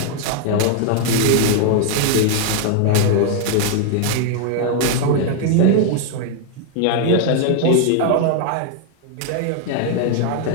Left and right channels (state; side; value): different; both; correlation 0.00